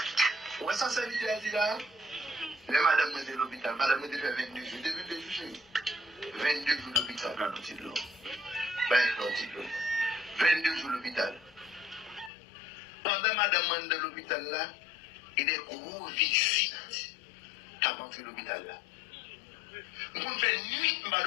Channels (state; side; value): drops out; right; at 12.3 s